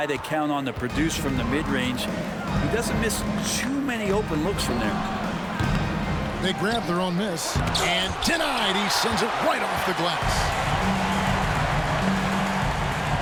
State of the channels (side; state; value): both; identical; correlation 1.00